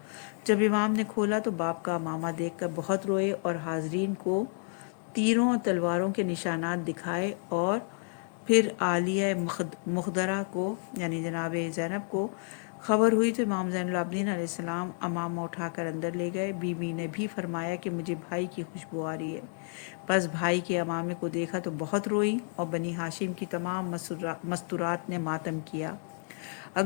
جب امام نے کھولا تو باپ کا امامہ دیکھ کر بہت روئے اور حاضرین کو تیروں اور تلواروں کے نشانات دکھائے، اور پھر عالیہ مخدرہ کو یعنی جناب زینب کو خبر ہوئی تو امام زین العابدین علیہ السلام امامہ اٹھا کر اندر لے گئے۔ بی بی نے بھی فرمایا کہ مجھے بھائی کی خوشبو آ رہی ہے۔ پس بھائی کے امامے کو دیکھا تو بہت روئی اور بنی ہاشم کی تمام مستورات نے ماتم کیا۔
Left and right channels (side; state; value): right; silent; 57 dB below the other